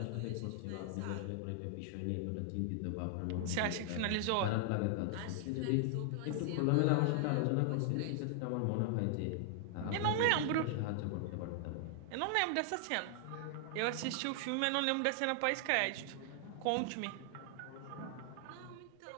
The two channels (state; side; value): different; both; correlation 0.00